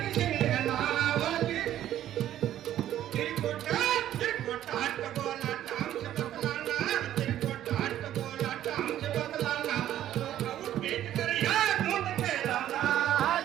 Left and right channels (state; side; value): quieter; left; 12.1 dB